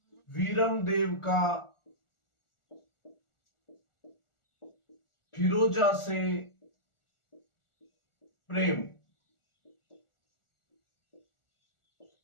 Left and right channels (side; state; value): right; late; 1.4 ms